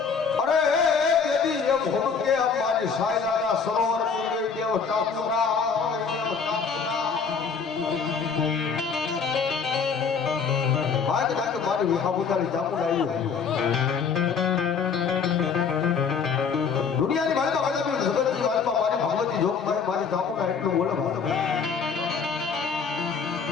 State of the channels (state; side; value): quieter; right; 5.9 dB